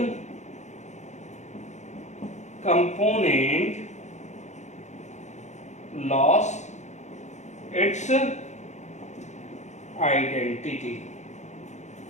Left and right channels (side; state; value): right; late; 0.34 ms